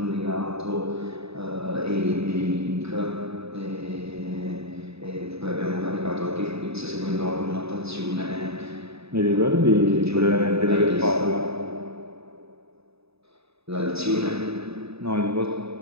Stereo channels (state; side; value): late; left; 0.79 ms